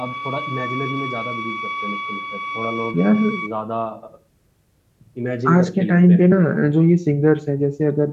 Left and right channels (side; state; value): both; identical; correlation 1.00